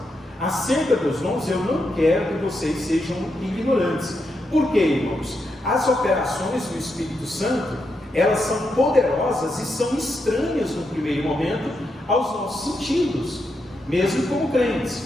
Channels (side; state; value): both; normal; correlation 0.83